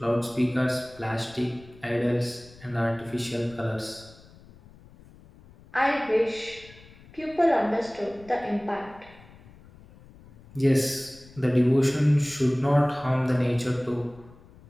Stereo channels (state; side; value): noise; left; rumble, 23 dB below the sound